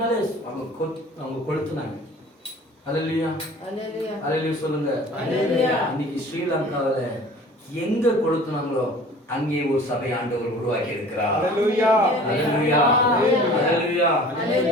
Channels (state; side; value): normal; both; correlation 0.45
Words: அவங்க கொளுத்துனாங்க. ஹல்லேலூயா ஹல்லேலூயா சொல்லுங்க. இன்னைக்கு ஸ்ரீலங்காவில எங்க கொளுத்துனாங்களோ அங்கே ஒரு சபை ஆண்டவர் உருவாக்கி இருக்கிறார். ஹல்லேலூயா ஹல்லேலூயா ஹல்லேலூயா.